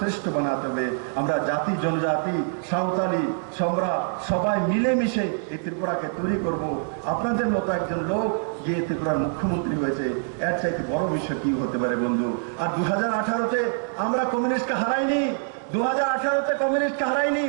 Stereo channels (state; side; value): silent; left; digital silence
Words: বানাতে হবে। আমরা জাতি, জনজাতি, সাঁওতালি, সম্রা সবাই মিলেমিশে এই ত্রিপুরাকে তৈরি করব। আপনাদের মতো একজন লোক গিয়ে ত্রিপুরার মুখ্যমন্ত্রী হয়েছে, এর চাইতে বড় বিষয় কি হতে পারে বন্ধু? আর 2018-তে আমরা কমিউনিস্টকে হারাইনি, 2018-তে কমিউনিস্টকে হারাইনি,